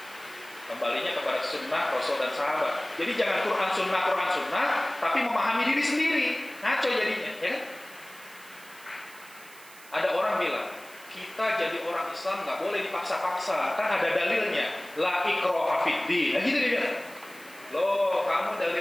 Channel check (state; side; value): noise; right; hiss, 20 dB below the sound